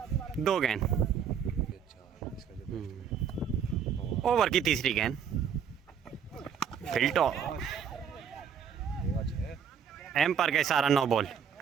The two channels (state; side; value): quieter; left; 7.6 dB